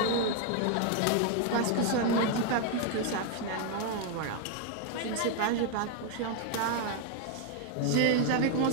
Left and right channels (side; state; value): both; different; correlation 0.00